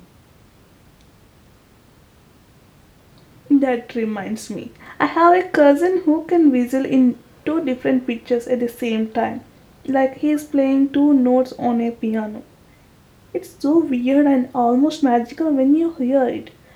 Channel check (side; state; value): both; identical; correlation 1.00